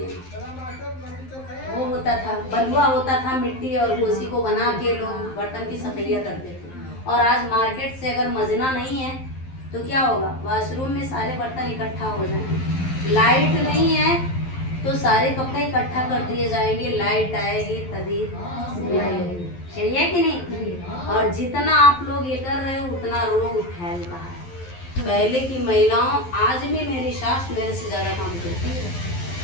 वो होता था बलुआ होता था, मिट्टी और उसी को बना के लोग बर्तन की सफाइयाँ करते थे। और आज मार्केट से अगर मजना नहीं है तो क्या होगा? वॉशरूम में सारे बर्तन इकट्ठा हो जाएंगे। लाइट नहीं है तो सारे कपड़े इकट्ठा कर दिए जाएंगे, लाइट आएगी तभी सही है कि नहीं? और जितना आप लोग ये कर रहे हो उतना रोग फैल रहा है। पहले की महिलाओं, आज भी मेरी सास मेरे से ज्यादा काम करती है,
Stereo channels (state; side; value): late; right; 11 ms